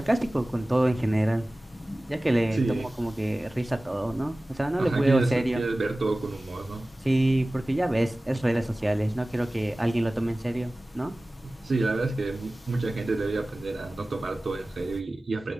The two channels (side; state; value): both; normal; correlation 0.97